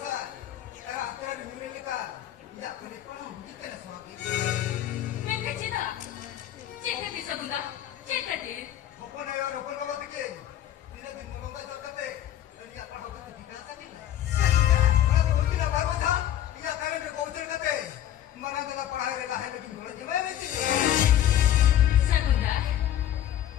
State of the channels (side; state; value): right; quieter; 11.7 dB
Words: तेरा तेरा निर्णय का या अपने पर हुई के स्वामी Mereka cina, cinta di Sakunda, cinta di. Open है और ओपन बाबा के दिन दिन मलोंगा जो करते तरी अपन होगा तो ठीक है नहीं बड़ा तो होती ना बाबा था या करे में पहुंचर करते मना देना पढ़ाई देना है लेकिन बोला जी मैं नहीं Sakunda,